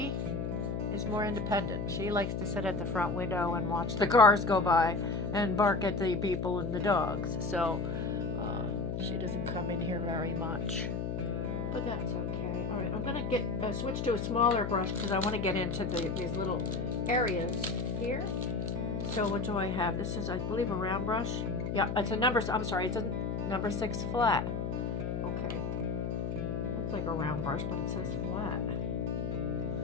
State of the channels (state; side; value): noise; left; hum, 2 dB below the sound